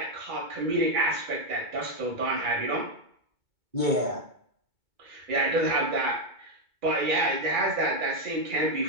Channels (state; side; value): late; left; 2.2 ms